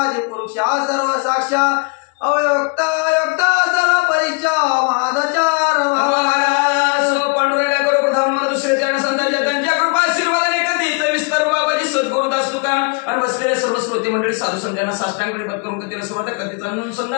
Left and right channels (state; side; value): quieter; right; 32.9 dB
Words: पुरुषा सर्व साक्षा अवयोक्ता योक्ता सर्व परीक्षा महादचार पांडुरंगा करो प्रथम दुसरे चरण संतांच्या त्यांच्या कृपा आशीर्वादाने कधीच विस्तार बाबाजी सद्गुरुदास तुका आणि बसलेले सर्व श्रोते मंडळी साधू संतांना साष्टांग प्रणिपात करून कधीला सुरुवात कधीच